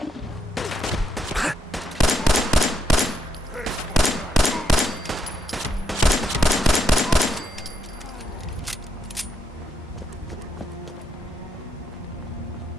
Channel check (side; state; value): both; normal; correlation 0.78